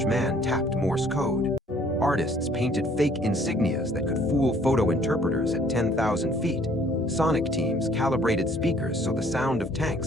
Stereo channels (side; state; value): both; normal; correlation 0.59